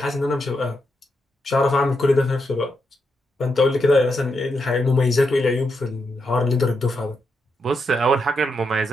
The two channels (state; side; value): normal; both; correlation 0.83